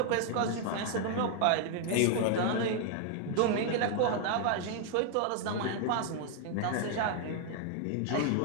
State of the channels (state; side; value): different; both; correlation 0.00